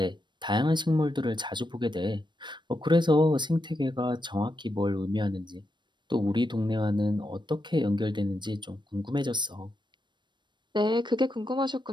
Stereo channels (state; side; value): late; left; 0.22 ms